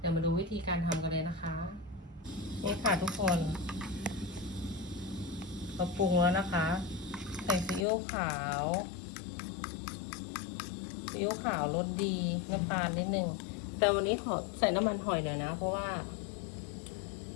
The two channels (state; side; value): drops out; right; at 7.9 s